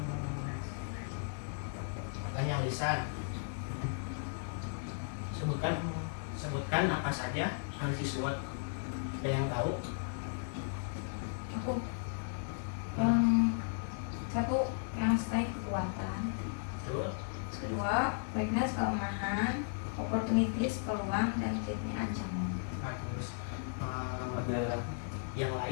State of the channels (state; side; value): silent; right; 54 dB below the other